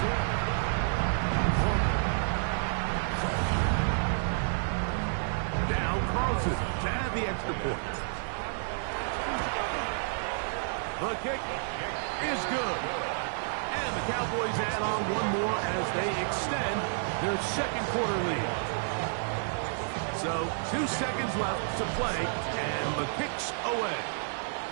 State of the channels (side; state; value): left; silent; 58 dB below the other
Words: The kick is good. And the Cowboys add on one more as they extend their second quarter lead. So 2 seconds left to play, and the kick's away.